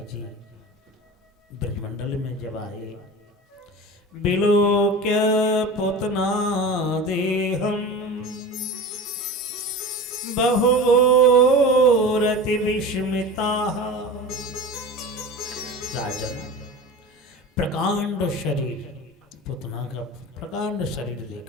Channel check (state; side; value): normal; both; correlation 0.32